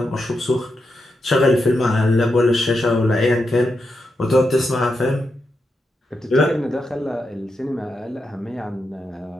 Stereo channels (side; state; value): both; normal; correlation 0.85